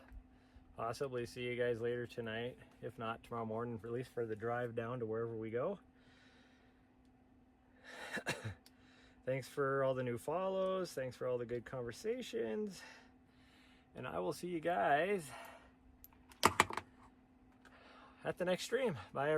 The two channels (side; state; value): both; identical; correlation 1.00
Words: possibly see you guys later tonight, if not tomorrow morning, at least for the drive down to wherever we go. Thanks for all the new follows. Thanks for all the good conversations. And I will see you guys at the next stream. Bye,